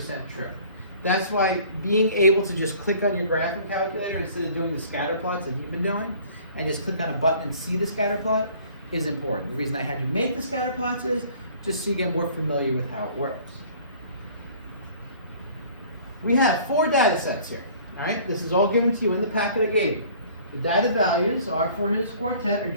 true. That's why being able to just click on your graphing calculator instead of doing the scatter plots that you've been doing, and just click on a button and see the scatter plot is important. The reason I had you make the scatter plots is just so you get more familiar with how it works. We have 4 data sets here. All right, this is all given to you in the packet I gave you. The data values are for his quartet are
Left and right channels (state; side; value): inverted; both; correlation -0.51